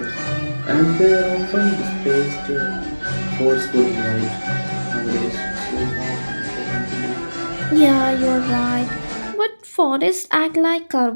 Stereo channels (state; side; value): inverted; both; correlation -1.00